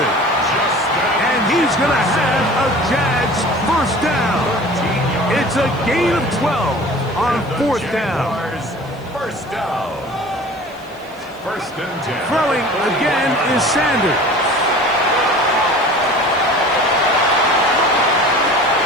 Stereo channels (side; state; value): left; noise; hiss, 28 dB below the sound